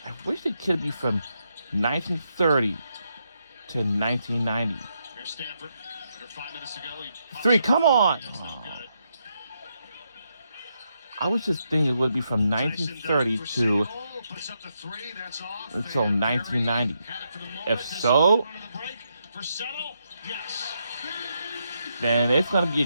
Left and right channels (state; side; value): inverted; both; correlation -0.80